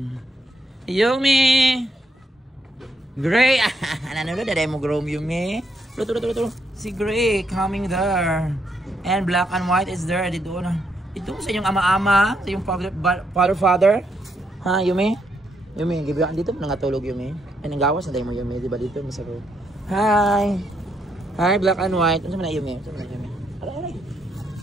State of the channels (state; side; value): normal; both; correlation 0.76